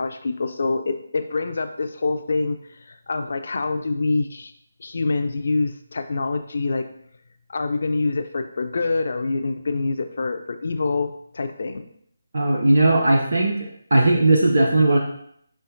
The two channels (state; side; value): inverted; both; correlation -0.90